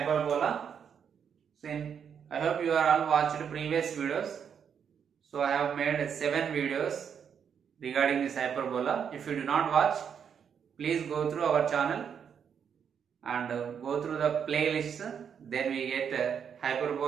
So I hope you are all watched previous videos. So I have made 7 videos regarding this hyperbola. If you do not watch, please go through our channel and go through the playlist. Then we get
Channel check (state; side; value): quieter; left; 7.5 dB